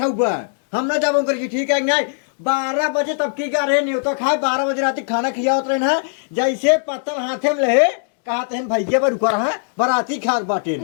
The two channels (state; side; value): silent; right; 66 dB below the other